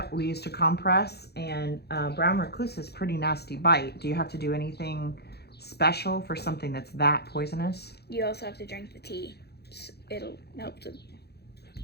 we used a compress, and brown recluse is a pretty nasty bite. Do you have to do anything special for something that's that poisonous? You also have to drink the tea. It'll help to...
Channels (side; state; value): right; late; 0.48 ms